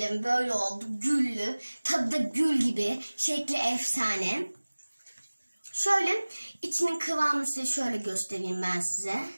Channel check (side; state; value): both; inverted; correlation -1.00